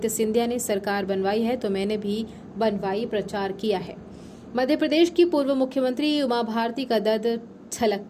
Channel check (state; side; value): identical; both; correlation 1.00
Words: सिंधिया ने सरकार बनवाई है तो मैंने भी बनवाई प्रचार किया है। मध्य प्रदेश की पूर्व मुख्यमंत्री उमा भारती का दर्द छलक